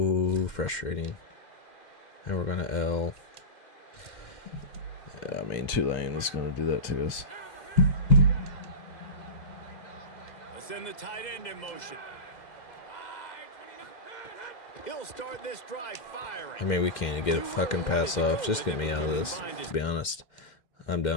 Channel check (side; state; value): right; late; 2.1 ms